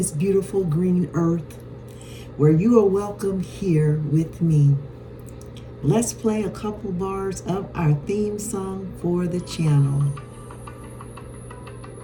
beautiful green earth, where you are welcome here with me. Let's play a couple bars of our theme song for the channel.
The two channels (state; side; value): identical; both; correlation 1.00